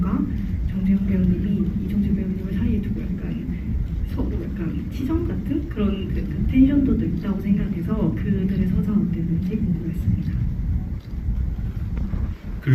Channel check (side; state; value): both; identical; correlation 1.00